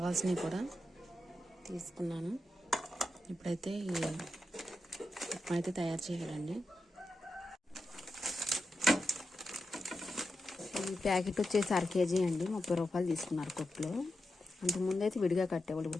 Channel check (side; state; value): both; normal; correlation 0.89